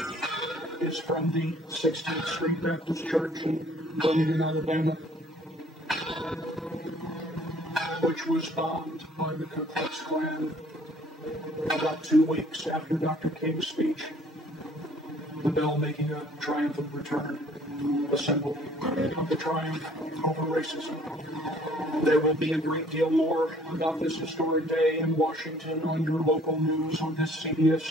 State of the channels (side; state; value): both; normal; correlation 0.57